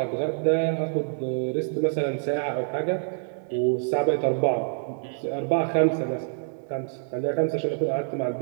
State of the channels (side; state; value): left; silent; digital silence